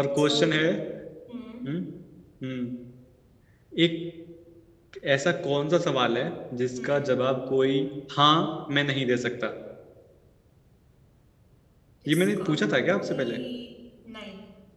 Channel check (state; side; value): identical; both; correlation 1.00